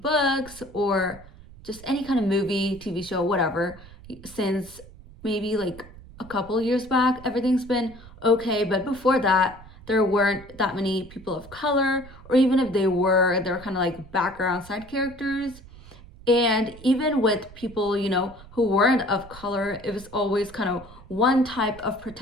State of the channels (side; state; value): right; noise; rumble, 19 dB below the sound